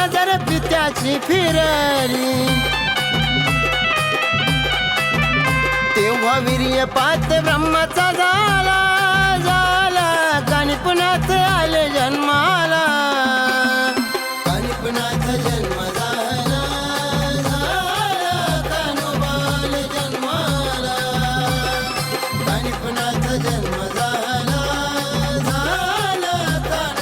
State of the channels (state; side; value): identical; both; correlation 1.00